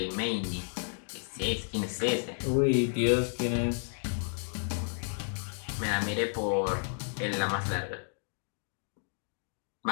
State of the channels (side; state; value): right; silent; digital silence